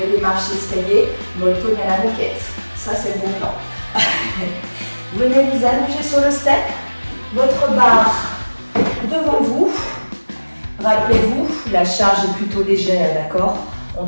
des marches d'escalier, molto à la moquette. Ça, c'est le bon plan. Venez vous allonger sur le step, votre barre devant vous. Rappelez-vous, la charge est plutôt légère, d'accord? On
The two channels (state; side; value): inverted; both; correlation -1.00